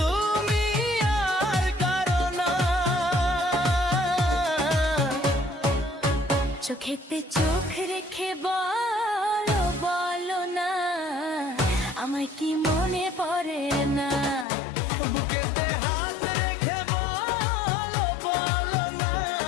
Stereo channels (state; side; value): drops out; right; at 14.5 s